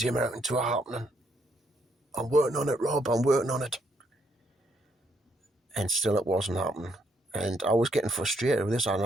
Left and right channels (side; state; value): both; normal; correlation 0.73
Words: the American tour happening? I'm working on it, Rob, I'm working on it. And still it wasn't happening. And I was getting frustrated with this. I don't